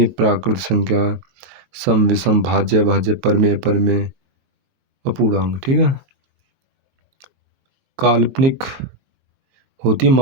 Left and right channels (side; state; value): left; late; 22 ms